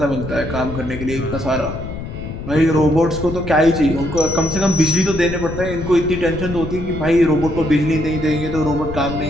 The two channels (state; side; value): noise; left; rumble, 8 dB below the sound